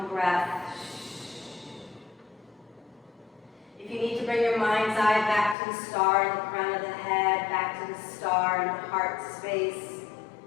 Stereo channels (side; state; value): right; drops out; at 5.6 s